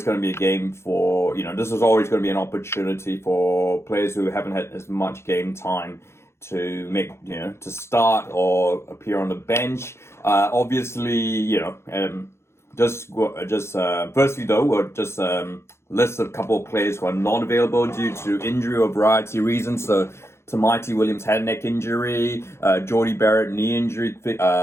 going to be a game for, this was always going to be an opportunity for players who haven't had as much game time to make, to start or appear on the bench. Obviously, just firstly though, we'll just list a couple of players who are not available due to injury or variety of reasons. So Tamati Williams had a neck injury, Jordy Barrett knee injury,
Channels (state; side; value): late; right; 0.13 ms